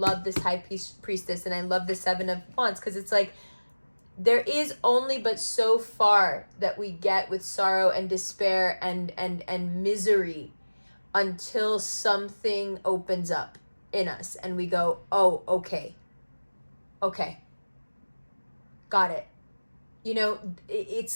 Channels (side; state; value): both; inverted; correlation -1.00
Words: this High Priestess and I love the Seven of Wands, because it's like there is only but so far that we get with sorrow and despair and misery until something opens up in us and we go, oh, okay, got it. You know,